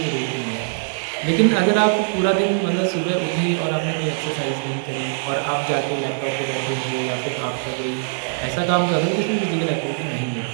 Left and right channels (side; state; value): left; silent; digital silence